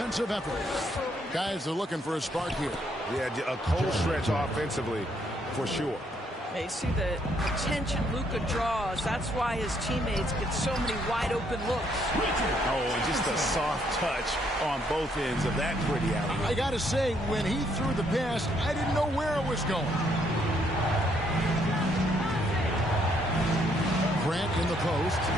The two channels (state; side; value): normal; both; correlation 0.71